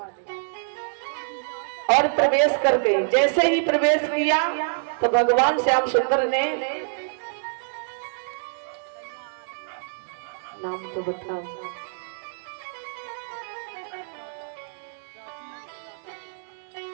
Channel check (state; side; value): silent; left; 61 dB below the other